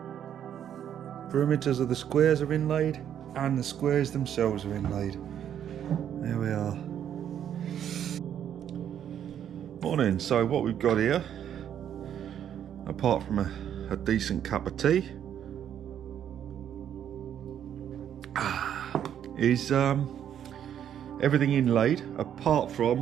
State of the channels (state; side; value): quieter; left; 9.6 dB